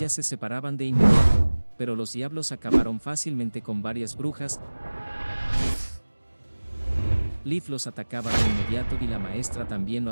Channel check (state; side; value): inverted; both; correlation -1.00